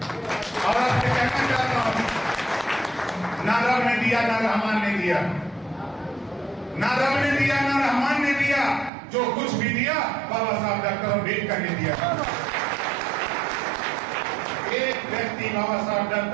और आपसे कहना चाहता हूँ, ना रब ने दिया ना रहमान ने दिया, ना रब ने दिया ना रहमान ने दिया, जो कुछ भी दिया बाबा साहब डॉक्टर अम्बेडकर ने दिया। एक व्यक्ति बाबा साहब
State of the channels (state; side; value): drops out; left; at 8.9 s